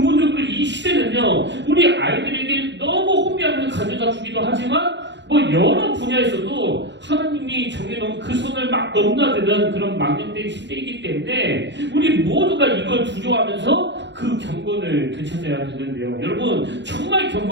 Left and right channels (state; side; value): late; left; 0.52 ms